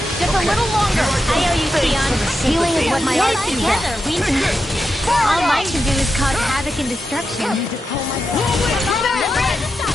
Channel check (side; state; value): both; normal; correlation 0.88